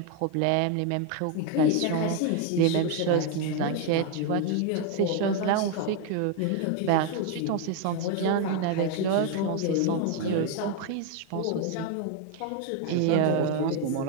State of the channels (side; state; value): both; different; correlation 0.01